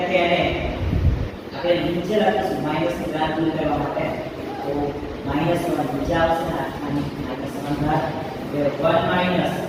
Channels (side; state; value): both; identical; correlation 1.00